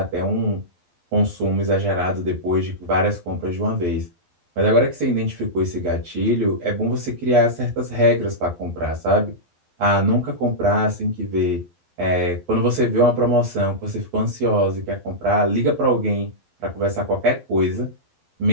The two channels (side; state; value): left; late; 11 ms